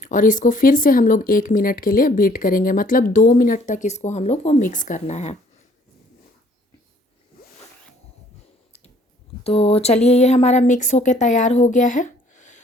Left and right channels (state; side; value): normal; both; correlation 0.60